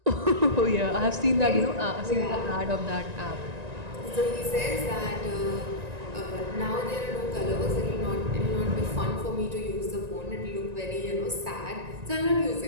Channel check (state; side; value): late; left; 1.9 ms